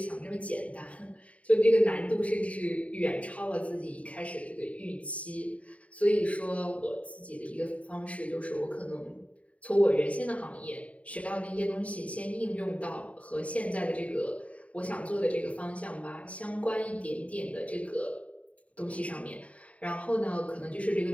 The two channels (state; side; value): late; right; 0.066 ms